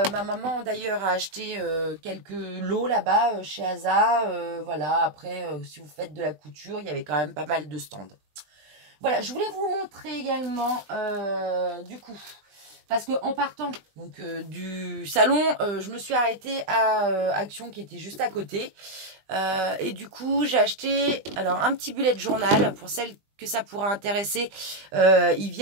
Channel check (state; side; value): late; left; 20 ms